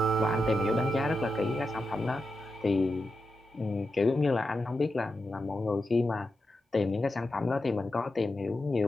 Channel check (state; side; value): normal; both; correlation 0.88